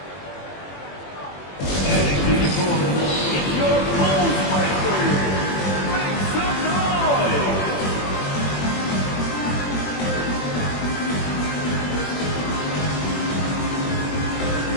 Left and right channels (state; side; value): late; right; 21 ms